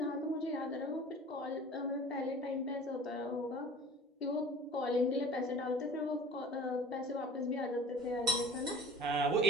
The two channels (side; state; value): both; normal; correlation 0.43